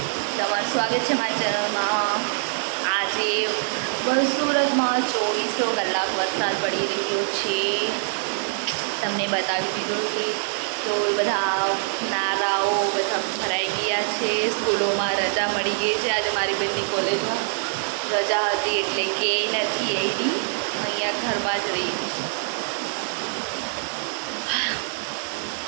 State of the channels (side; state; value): left; silent; 62 dB below the other